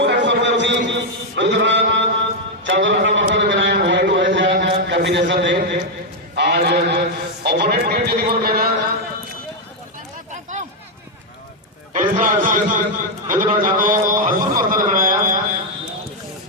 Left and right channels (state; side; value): normal; both; correlation 0.00